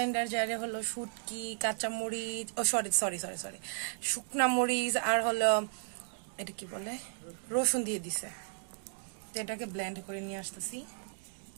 জারে হলো শুটকি, কাঁচা মরিচ, সরি শুকনা মরিচ আর হলো এটা কি বলে রসুন দিয়ে দিছে। তো এটাকে ব্লেন্ড করে নিয়ে আসতেছি।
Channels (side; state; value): left; silent; digital silence